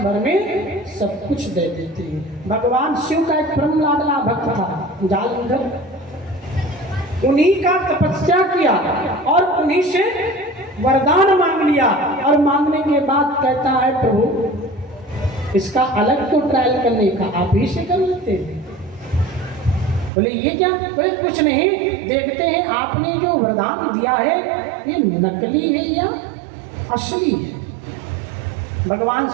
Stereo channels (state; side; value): drops out; left; at 20.1 s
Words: भर में सब कुछ दे देते हैं। भगवान शिव का एक परम लाडला भक्त था जालंधर, उन्हीं का तपस्या किया और उन्हीं से वरदान मांग लिया, और मांगने के बाद कहता है प्रभु इसका अलग तो ट्रायल करने का आप ही से कर लेते हैं। बोले ये क्या? बोले कुछ नहीं, देखते हैं आपने जो वरदान दिया है ये नकली है या असली है। भगवान